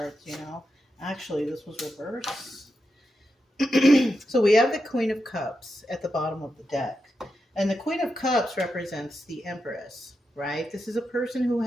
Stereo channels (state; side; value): normal; both; correlation 0.87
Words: you know. Actually, this was reverse. So we have the Queen of Cups at the bottom of the deck. And the Queen of Cups represents the Empress, right? This is a person who